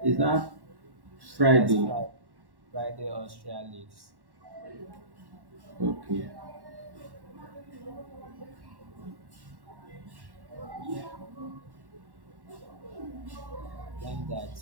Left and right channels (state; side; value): late; left; 1.1 ms